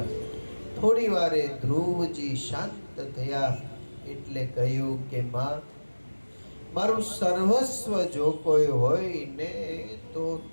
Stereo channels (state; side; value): inverted; both; correlation -1.00